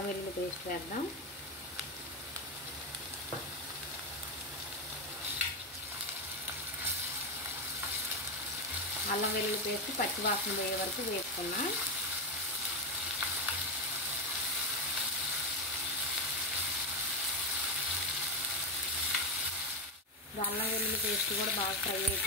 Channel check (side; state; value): both; normal; correlation 0.10